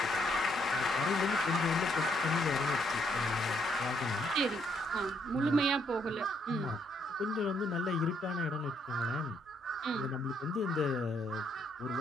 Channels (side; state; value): both; normal; correlation 0.72